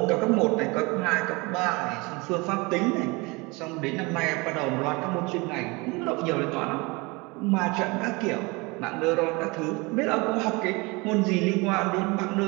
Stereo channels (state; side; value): quieter; left; 26.0 dB